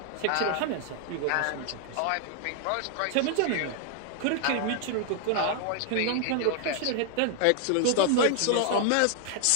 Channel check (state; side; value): different; both; correlation 0.00